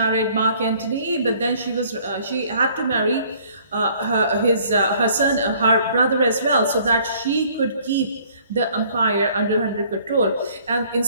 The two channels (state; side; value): inverted; both; correlation -0.58